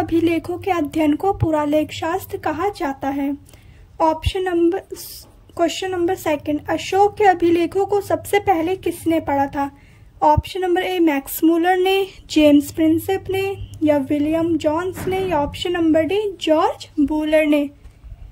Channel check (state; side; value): identical; both; correlation 1.00